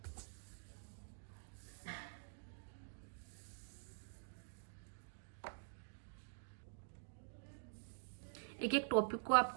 एक एक टॉपिक को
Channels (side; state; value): left; silent; digital silence